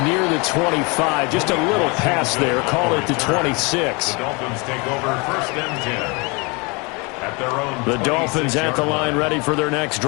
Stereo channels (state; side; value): quieter; right; 29.2 dB